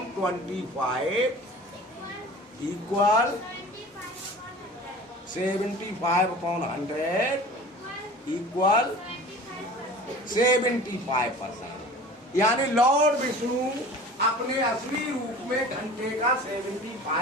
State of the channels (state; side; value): normal; both; correlation 0.40